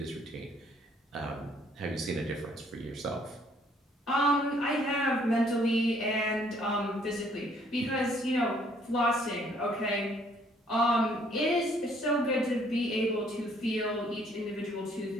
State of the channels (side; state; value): both; normal; correlation 0.64